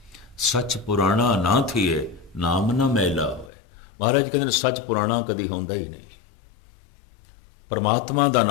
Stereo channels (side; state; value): right; drops out; at 3.5 s